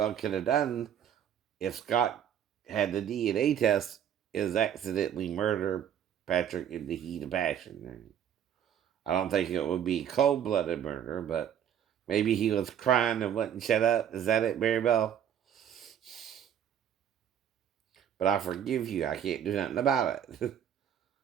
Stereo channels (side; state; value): left; quieter; 9.3 dB